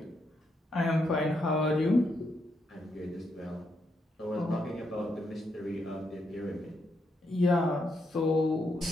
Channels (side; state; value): both; normal; correlation 0.79